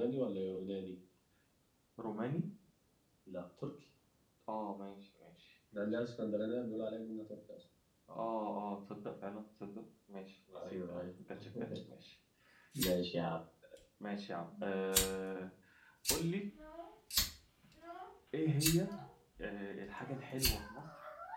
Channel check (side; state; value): both; identical; correlation 1.00